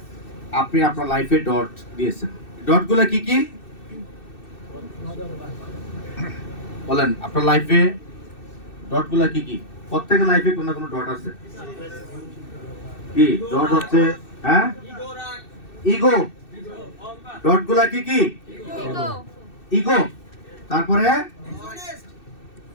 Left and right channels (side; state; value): right; late; 2.6 ms